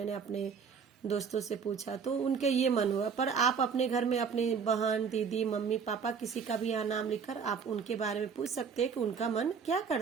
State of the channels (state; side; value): quieter; left; 6.2 dB